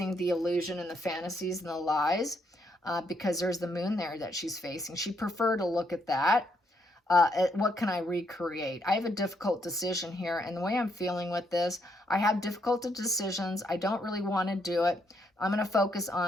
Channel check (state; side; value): normal; both; correlation 0.75